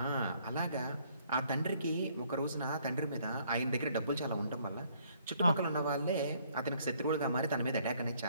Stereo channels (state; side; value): inverted; both; correlation -0.64